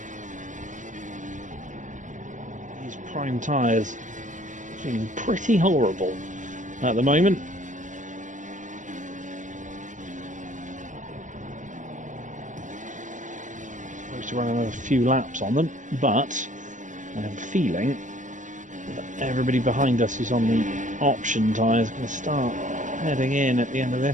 These prime tyres feeling pretty horrible at the moment. Supposed to run another few laps on them, but I have a feeling that everybody behind us who's on the option tyres is going to start heading in at the end of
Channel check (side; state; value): left; late; 0.37 ms